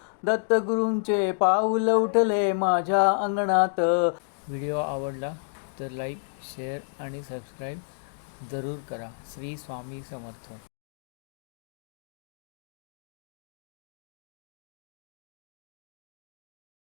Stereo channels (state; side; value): silent; right; digital silence